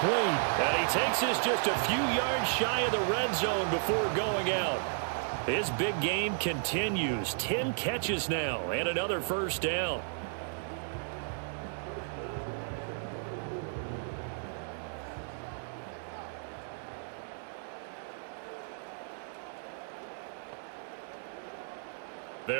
And he takes this just a few yards shy of the red zone before going out. His big game continues. 10 catches now and another first down.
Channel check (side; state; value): left; silent; 55 dB below the other